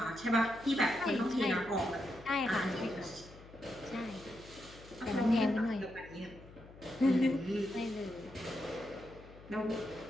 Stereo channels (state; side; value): noise; left; hum, 20 dB below the sound